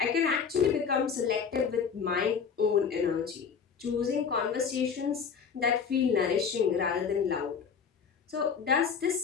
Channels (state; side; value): quieter; right; 6.4 dB